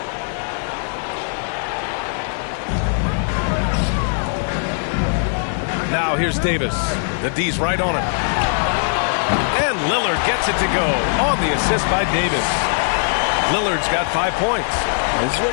Now here's Davis. The D's right on him. And Lillard gets it to go on the assist by Davis. Lillard's got 5 points. This is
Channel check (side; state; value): right; silent; 66 dB below the other